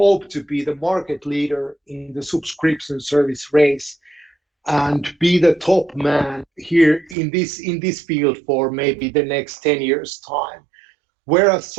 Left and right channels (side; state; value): left; drops out; at 7.2 s